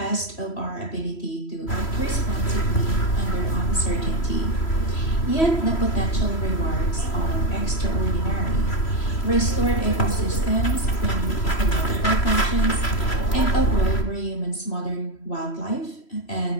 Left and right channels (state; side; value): late; right; 3.1 ms